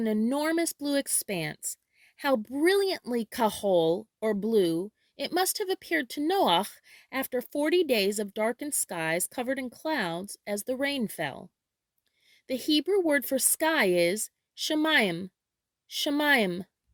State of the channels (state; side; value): identical; both; correlation 1.00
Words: enormous blue expanse. How brilliantly kahol, or blue, it must have appeared to Noach after 40 days of darkened skies covered in clouds as the rain fell. The Hebrew word for sky is SHAMAYIM, SHAMAYIM.